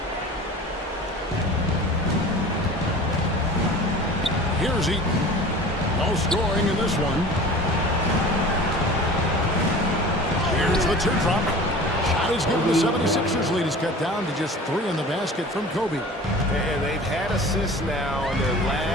Here's Eaton. No scoring in this one. Here's the teardrop. Shot is given. The 76ers lead is cut down to just 3 in the basket from Kobe. And they've had assists now on their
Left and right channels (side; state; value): both; normal; correlation 0.40